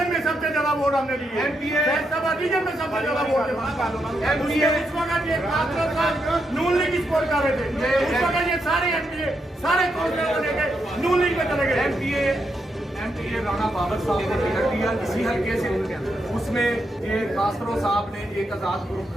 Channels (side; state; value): both; normal; correlation 0.81